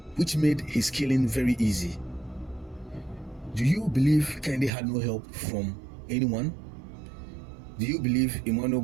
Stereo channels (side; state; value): left; drops out; at 4.7 s